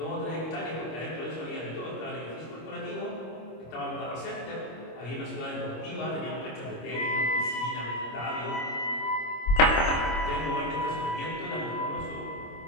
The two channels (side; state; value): right; late; 25 ms